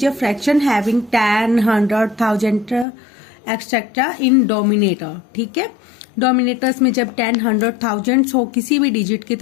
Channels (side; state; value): right; drops out; at 2.9 s